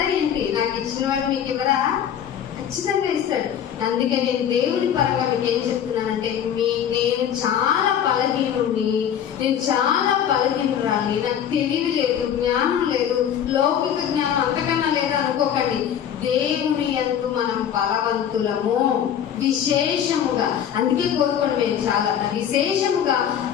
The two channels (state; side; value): quieter; right; 9.2 dB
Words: ఏంటి? నాకు ఇచ్చిన వాడు మీకు ఇవ్వరా? ఖచ్చితంగా ఇస్తాడు. అందుకే నేను దేవుని పరంగా మీకు ఏం చెప్తున్నానంటే, నేను చాలా బలహీనుడిని, నేను చాలా బలహీనురాలి, నాకు తెలివి లేదు, జ్ఞానం లేదు, లౌకిక జ్ఞానం అంతకన్నా లేదు అనుకోకండి. దేవుని యందు మనం బలవంతులము విశేషముగా. అందుకే కోరుకోండి, మేము చాలా విశేషముగా